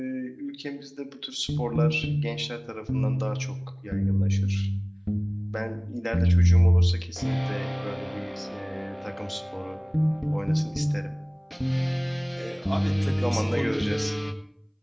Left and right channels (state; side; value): identical; both; correlation 1.00